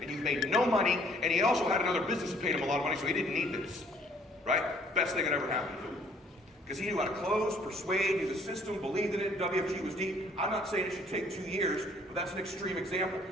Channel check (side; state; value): both; normal; correlation 0.60